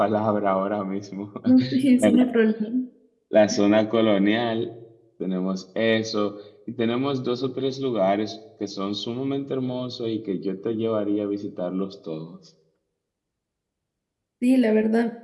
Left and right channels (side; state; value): both; identical; correlation 1.00